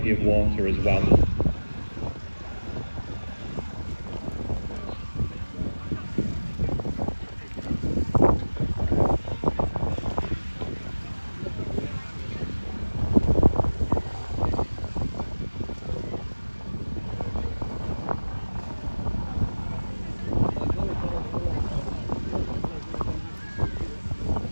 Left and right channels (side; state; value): both; inverted; correlation -1.00